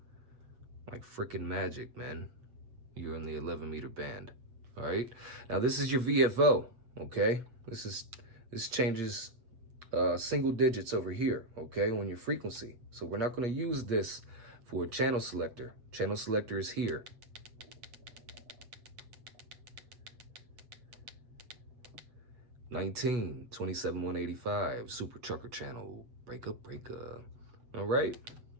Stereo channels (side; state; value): left; late; 8.2 ms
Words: Like freaking magic, man. You're in the 11-meter band. All right. Now this is your VFO. Okay. This changes single digits over here. Okay, on your frequency. So we're not going to use this for a channel selector. Channel selector is here. (19, 27, 185) super trucker channel. Breaker. All right.